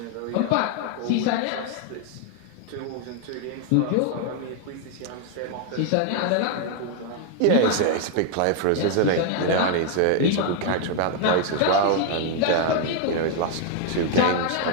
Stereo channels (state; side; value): different; both; correlation 0.00